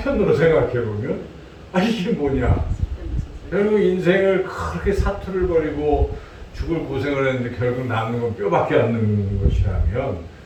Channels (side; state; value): both; identical; correlation 1.00